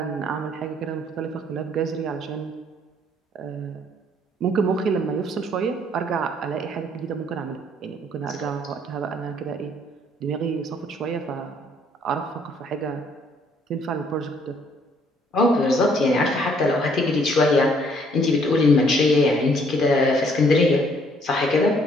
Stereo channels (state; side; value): normal; both; correlation 0.64